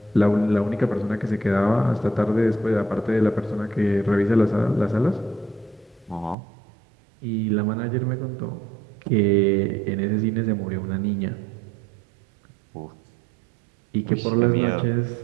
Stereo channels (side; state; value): left; drops out; at 6.4 s